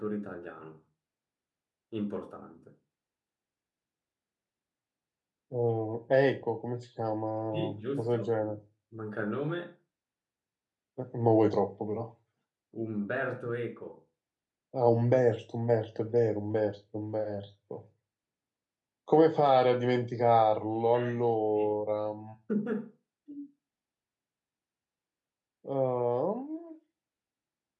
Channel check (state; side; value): identical; both; correlation 1.00